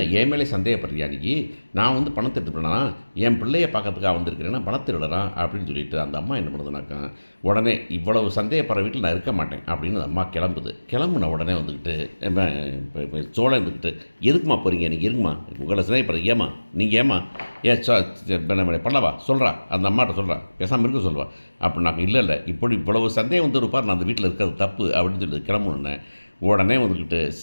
என் மேலே சந்தேகப்படுறியா நீ, நான் வந்து பணத்தை எடுத்துட்டேன்னா என் பிள்ளையை பார்க்கறதுக்காக வந்திருக்கிறேன்னா பணத்தை எடுறேன் அப்படின்னு சொல்லிட்டு அந்த அம்மா என்ன பண்ணுதுனாக்கா, உடனே இவ்வளவு சந்தேகப்படுற வீட்டில் நான் இருக்க மாட்டேன் அப்படின்னு அந்த அம்மா கிளம்புன உடனே வந்துக்கிட்டு சோழன் இருந்துக்கிட்டு எதுக்குமா போகிறீங்க, நீங்கள் இருக்குமா உங்களை சந்தேகப்படுறது, நீங்கள் பண்ணவா சொல்கிறா, அந்த அம்மாட்ட சொல்கிறா, பேசாமல் இருக்க சொல்வா அப்படின்னாக்க, இல்லை இவ்வளவு சந்தேகம் வந்து இருப்பார், நான் அந்த வீட்டில் இருக்கிறது தப்பு அப்படின்னு சொல்லி கிளம்புனேன். உடனே வந்துக்கிட்டு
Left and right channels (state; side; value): inverted; both; correlation -1.00